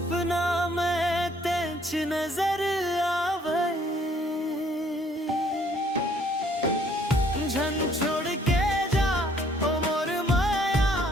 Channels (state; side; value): normal; both; correlation 0.62